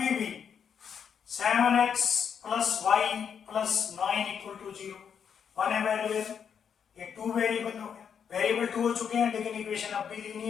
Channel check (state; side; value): quieter; right; 7.5 dB